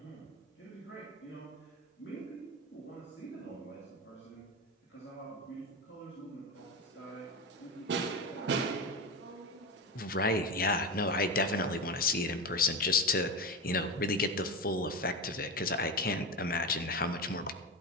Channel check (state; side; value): normal; both; correlation 0.20